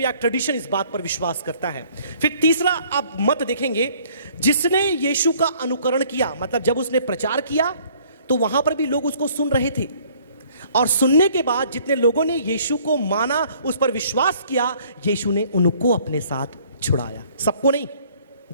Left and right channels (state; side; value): inverted; both; correlation -0.58